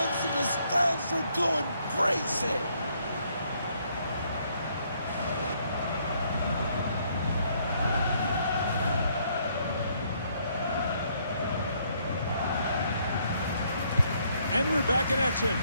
and the stands are going crazy. And we're back in action.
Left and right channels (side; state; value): both; inverted; correlation -0.69